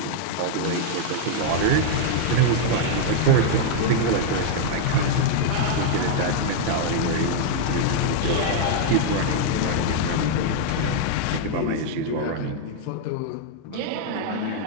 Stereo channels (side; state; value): both; different; correlation 0.00